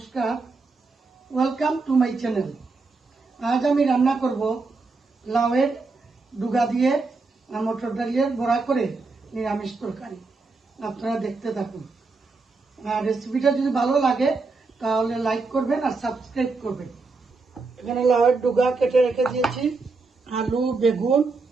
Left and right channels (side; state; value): left; quieter; 3.9 dB